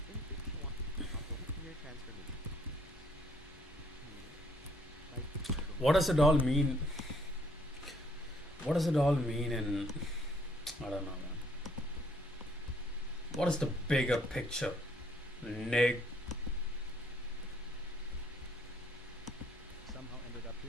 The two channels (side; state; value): both; normal; correlation 0.65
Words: In picture 1, linear transformation. What does it all mean? What does it all mean in, I don't know, man. What is the bigger picture? Somehow ended up